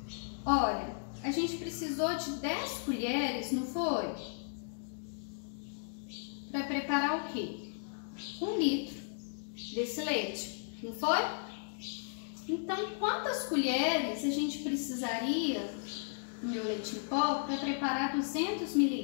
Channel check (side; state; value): right; silent; digital silence